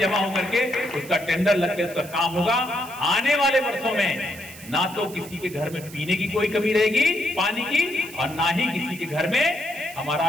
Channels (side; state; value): right; noise; hiss, 17 dB below the sound